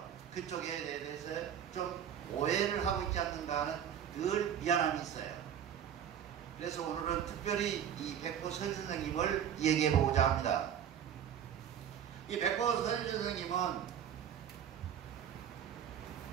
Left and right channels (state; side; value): quieter; left; 9.1 dB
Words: 그쪽에 대해서 좀 오해를 하고 있지 않는가 하는 늘 미안함이 있어요. 그래서 오늘은 특별히 이 백포 서일 선생님을 얘기해 보고자 합니다. 이 백포 서일 선생님은